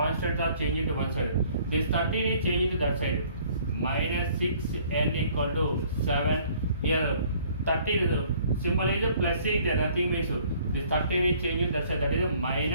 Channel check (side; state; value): both; inverted; correlation -0.58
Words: are changing to one side. This 13 is changing to that side. Minus 6 n equal to 7. Here 13 symbol is plus 6 there, nothing means this 13 is changing that side, that is